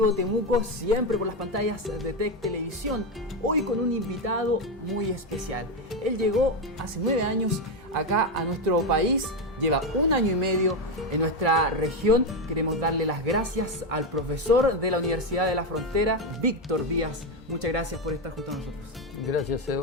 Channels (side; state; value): both; normal; correlation 0.10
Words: Temuco, siempre por las pantallas de TEC Televisión. Hoy con un invitado muy especial. Él llegó hace 9 años acá a nuestro país, lleva 1 año y medio en nuestra región. Queremos darle las gracias al profesor de la Universidad de la Frontera, Víctor Díaz. Muchas gracias por estar junto a nosotros. Gracias